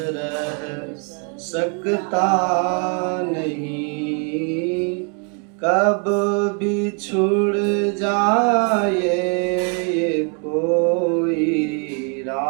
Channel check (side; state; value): left; quieter; 38.9 dB